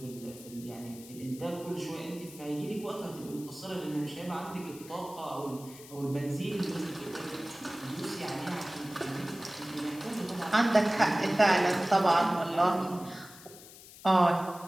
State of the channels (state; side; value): noise; left; hiss, 18 dB below the sound